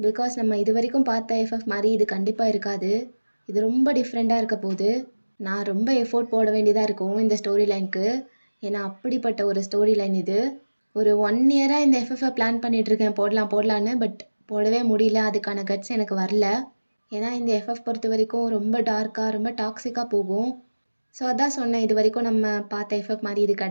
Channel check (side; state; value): both; inverted; correlation -1.00